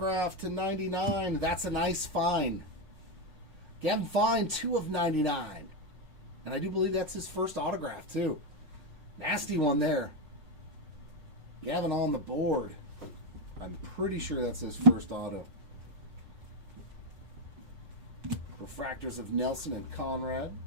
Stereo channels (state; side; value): late; left; 5.7 ms